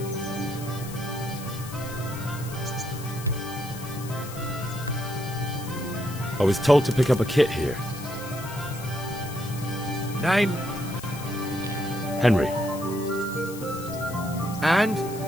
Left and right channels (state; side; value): noise; left; hiss, 14 dB below the sound